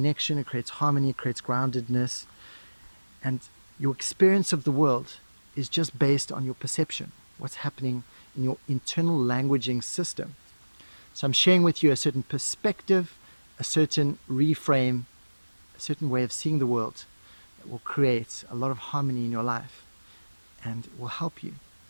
it creates harmony, it creates groundedness. And your experience of the world is just based on your perception, what's happening in your internal languaging system. So I'm sharing with you a certain perspective, a certain reframe, a certain way of seeing the world that will create a lot of harmony in your life, and it will help you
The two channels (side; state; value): both; inverted; correlation -1.00